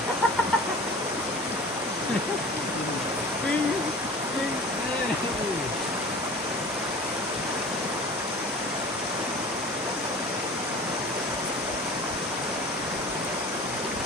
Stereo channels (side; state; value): both; normal; correlation 0.40